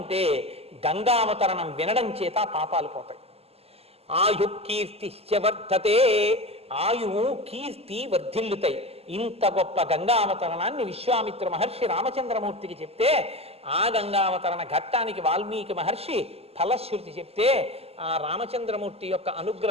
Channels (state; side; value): late; left; 0.29 ms